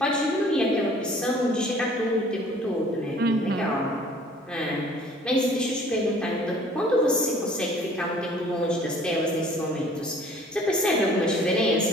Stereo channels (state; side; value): normal; both; correlation 0.53